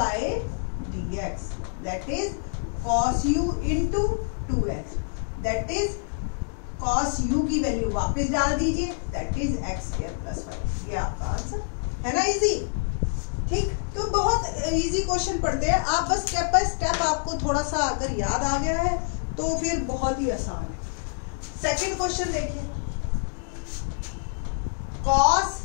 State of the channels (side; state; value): right; silent; digital silence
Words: dx, that is cos u into 2x, that is cos u की वैल्यू वापस डाल दीजिए, that is x square plus 5। ये आपका आंसर है ना, इजी, ठीक। तो बहुत इजी क्वेश्चन पढ़ते हैं आप, बस स्टेप बाय स्टेप आपको थोड़ा सा अगर याद आ गया है तो फिर बहुत ही आसान है। सेकंड क्वेश्चन देखिए, cos